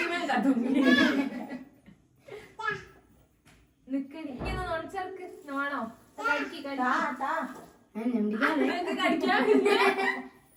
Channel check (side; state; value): both; identical; correlation 1.00